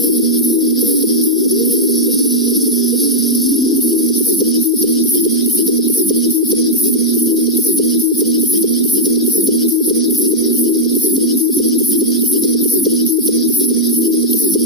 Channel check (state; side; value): normal; both; correlation -0.04